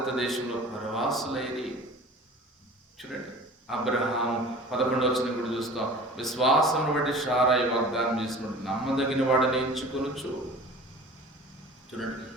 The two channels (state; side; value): normal; both; correlation 0.42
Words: దేశంలో పరవాసులైరి. చూడండి, అబ్రహాము 11వ వచనం కూడా చూస్తాం, విశ్వాసమును బట్టి శారాయి వాగ్దానం చేసినప్పుడు నమ్మదగిన వాడిని ఎంచుకొనుచు. చూడండి,